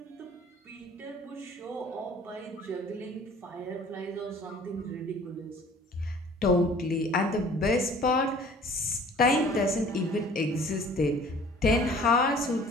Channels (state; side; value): normal; both; correlation 0.50